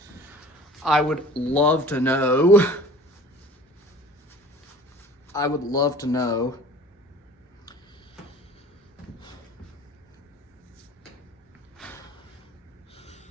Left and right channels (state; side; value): normal; both; correlation 0.45